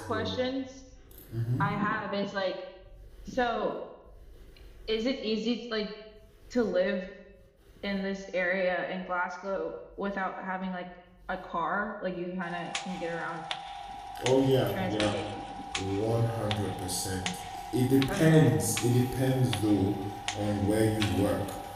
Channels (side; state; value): both; identical; correlation 1.00